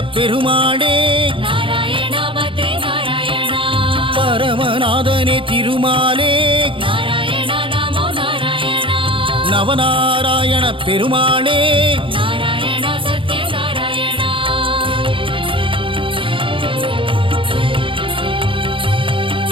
பெருமாளே நாராயண பத்ரி நாராயண பரமநாதனே திருமாலே நாராயண நமோ நாராயண நவநாராயண பெருமாளே நாராயண சத்ய நாராயண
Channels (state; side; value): late; left; 0.25 ms